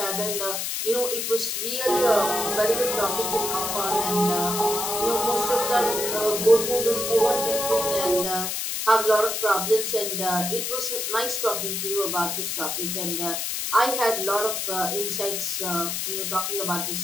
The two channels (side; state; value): left; noise; hiss, 2 dB below the sound